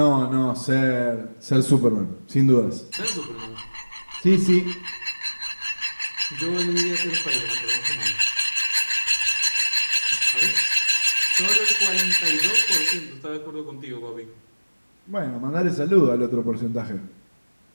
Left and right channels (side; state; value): both; inverted; correlation -1.00